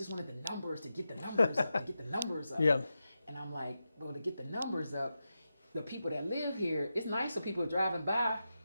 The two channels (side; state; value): both; inverted; correlation -0.90